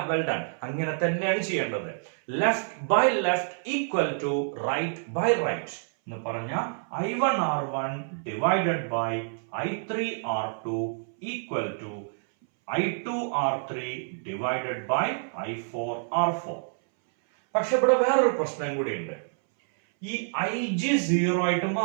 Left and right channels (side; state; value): left; silent; 60 dB below the other